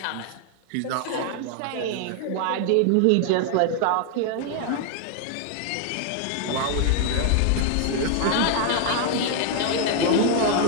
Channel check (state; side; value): different; both; correlation 0.00